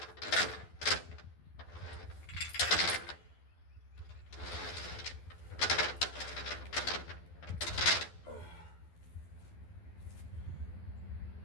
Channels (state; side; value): late; right; 12 ms